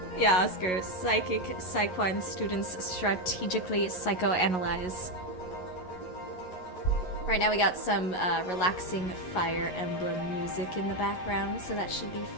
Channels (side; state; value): right; late; 11 ms